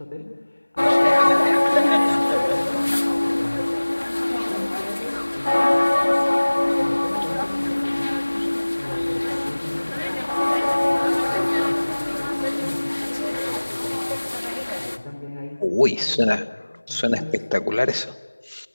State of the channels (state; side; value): inverted; both; correlation -1.00